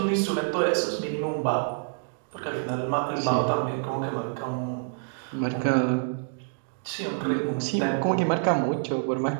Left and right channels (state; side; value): silent; left; digital silence